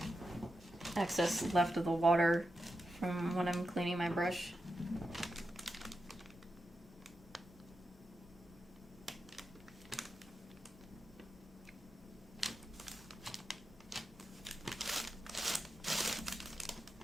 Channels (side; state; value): both; normal; correlation 0.88